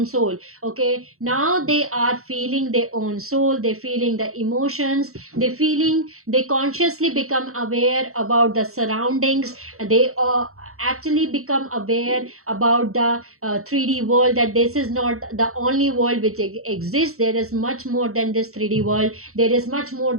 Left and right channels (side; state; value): left; late; 0.63 ms